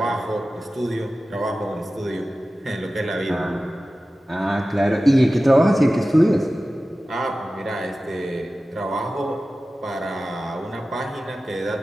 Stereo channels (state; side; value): normal; both; correlation 0.95